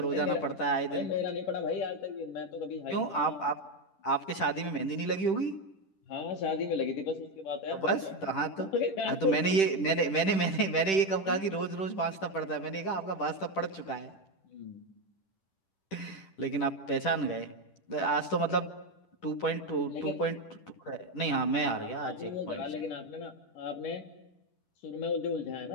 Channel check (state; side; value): late; right; 10 ms